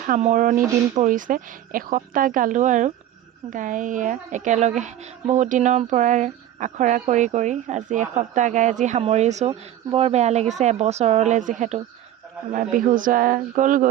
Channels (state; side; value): quieter; left; 12.1 dB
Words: সামৰণি দিন পৰিছে। এসপ্তাহ গালোঁ আৰু গাই একেলগে বহুত দিনৰ পৰা আখৰা কৰি আজি এসপ্তাহ গাই আজি সামৰিছোঁ। বৰ বেয়া লাগিছে, এবছৰলৈ যিহেতু আমাৰ বিহু যোৱা